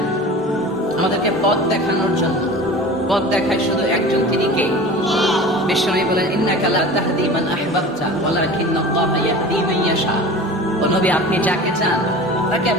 আমাদেরকে পথ দেখানোর জন্য। পথ দেখায় শুধু একজন, তিনি কে? বিশ্বনবী বলেন, ইন্নাকা লা তাহদি মান আহবাবতা ওয়ালাকিন্নাল্লাহা ইয়াহদি মান ইয়াশা। ও নবী, আপনি যাকে চান তাকে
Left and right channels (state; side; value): normal; both; correlation 0.37